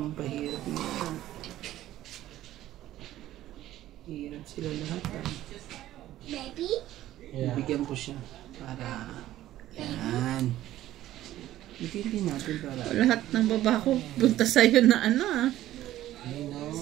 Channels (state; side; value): quieter; left; 14.0 dB